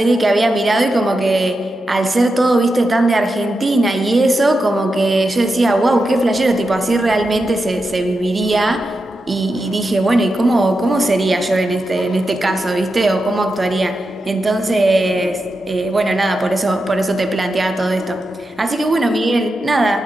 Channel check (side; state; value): both; normal; correlation 0.89